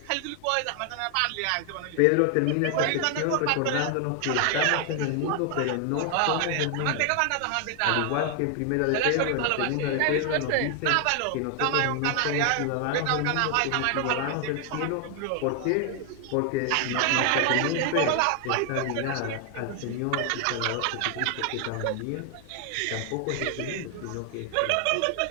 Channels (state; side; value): different; both; correlation 0.00